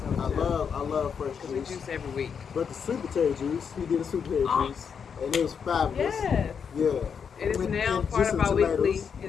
I love fresh juice. We juice every week. But the sweet potato juice, he did a sweet potato juice, and it was fabulous. Yes. Yeah. It is now part of our weekly.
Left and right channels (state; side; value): quieter; right; 6.8 dB